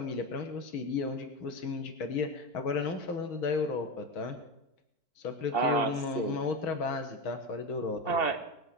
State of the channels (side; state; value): right; late; 4.5 ms